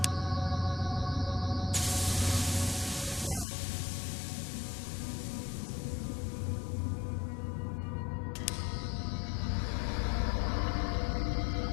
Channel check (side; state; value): right; drops out; at 3.5 s